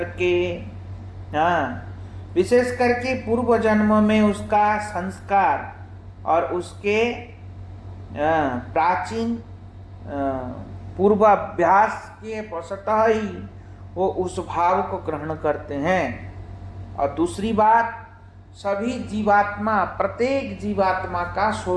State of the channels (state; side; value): identical; both; correlation 1.00